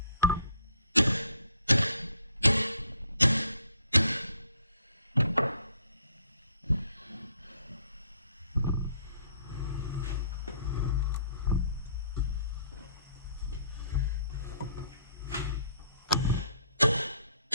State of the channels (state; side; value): inverted; both; correlation -0.63